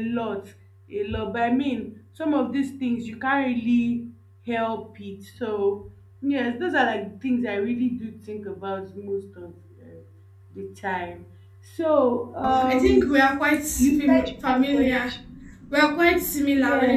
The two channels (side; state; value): both; identical; correlation 1.00